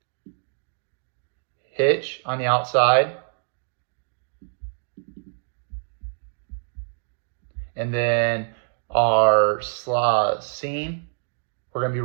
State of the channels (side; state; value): left; silent; digital silence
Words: hitch on the outside, and then our slot seam. We're going to be